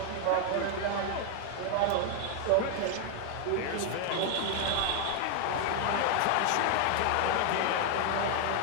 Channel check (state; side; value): different; both; correlation 0.00